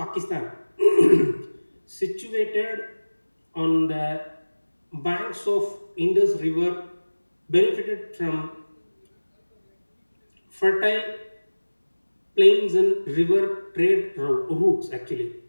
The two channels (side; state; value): both; inverted; correlation -1.00